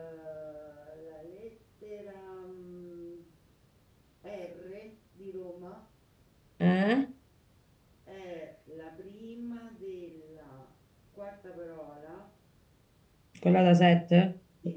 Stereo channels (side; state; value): both; identical; correlation 1.00